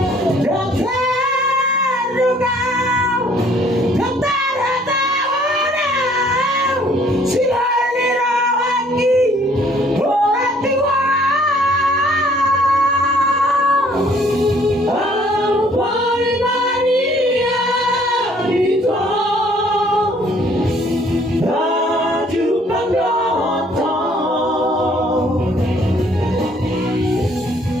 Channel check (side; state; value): both; normal; correlation 0.60